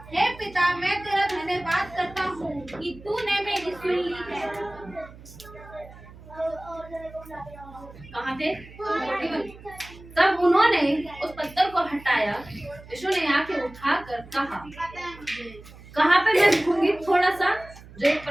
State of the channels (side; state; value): right; noise; hum, 19 dB below the sound